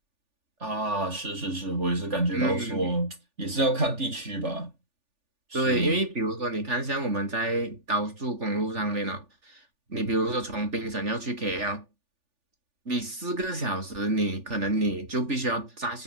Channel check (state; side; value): late; left; 3.4 ms